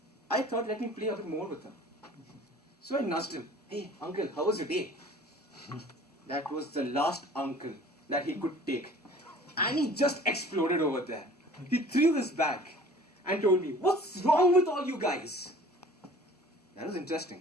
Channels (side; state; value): both; normal; correlation 0.47